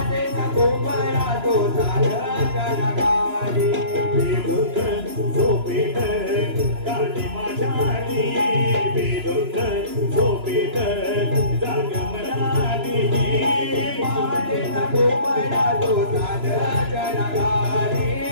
कोंबडा तो झालं जनगाडी बेधुंद झोपेत काळी माझ्यानी बेधुंद झोपेत जाग मनाली पहाटेचा कोंबडा तो झालं जनगाडी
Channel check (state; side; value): late; left; 3.0 ms